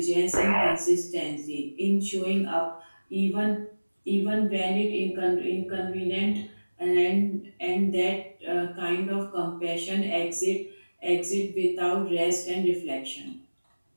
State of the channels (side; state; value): both; inverted; correlation -1.00